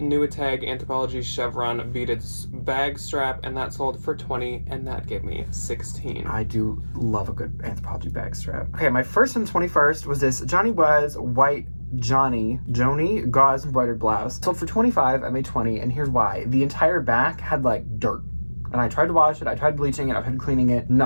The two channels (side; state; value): both; inverted; correlation -1.00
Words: Anthropologie Chevron beaded bag strap, and that sold for $20, and that gave me $16. I do love a good Anthropologie bag strap. Okay, my first and 21st was this Johnny Was white Joni gauze embroidered blouse. Sold for $25, I made $20, and here's why. The entire back had like dirt. And I tried to wash it, I tried bleaching it, I tried cleaning it.